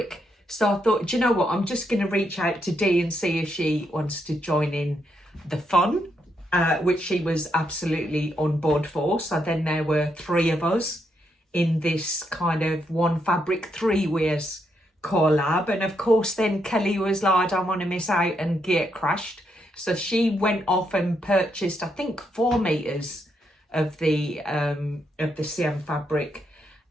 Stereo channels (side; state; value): both; normal; correlation 0.79